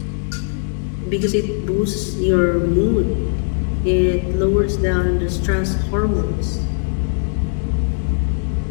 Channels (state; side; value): silent; right; digital silence